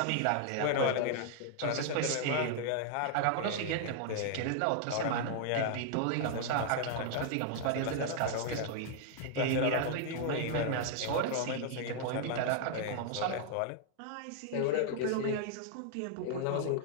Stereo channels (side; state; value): both; different; correlation 0.00